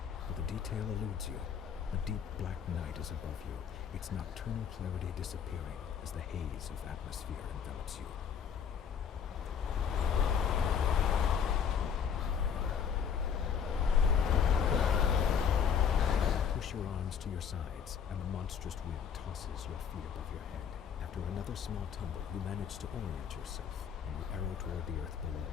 but the detail eludes you. A deep black night is above you, its nocturnal clarity disappearing as the haze of atmosphere envelops you. Push your arms to your sides, and the monstrous wind tosses your feet above your head. After another small tumble, you manage to orient yourself, and you arrow toward the earth below.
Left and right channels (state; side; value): quieter; right; 7.5 dB